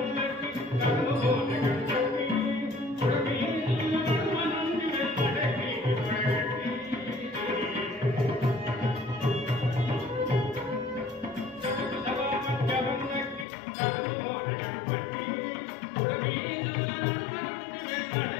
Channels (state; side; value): drops out; right; at 13.5 s